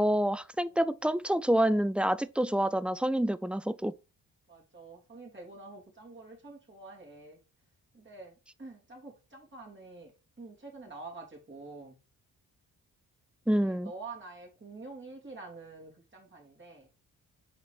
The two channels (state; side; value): normal; both; correlation 0.93